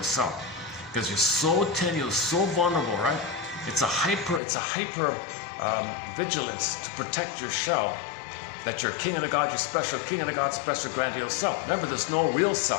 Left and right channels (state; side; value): drops out; right; at 4.4 s